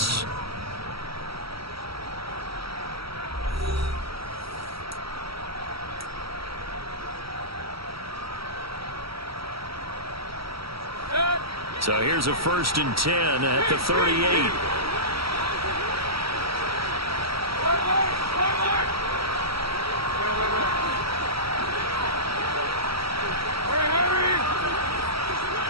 So here's a 1st and 10 at the 38.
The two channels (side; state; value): left; late; 0.75 ms